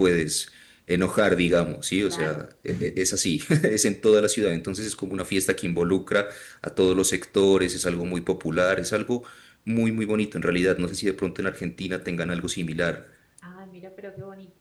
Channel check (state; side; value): identical; both; correlation 1.00